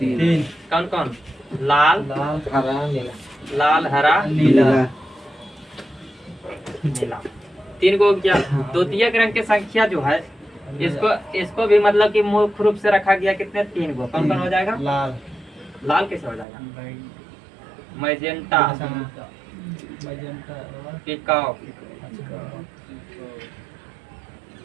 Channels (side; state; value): left; drops out; at 16.4 s